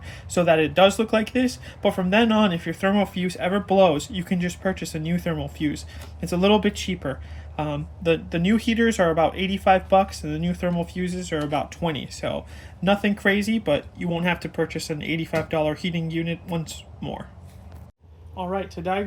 so that it does look like this. But from then on, if your thermal fuse ever blows, you can just purchase a new thermal fuse. It's a little bit cheaper. The new heaters are about $85 and the new thermal fuses are about $20. So nothing crazy, but you won't have to purchase an $85 heating unit once more. Alright, to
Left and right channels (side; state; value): both; identical; correlation 1.00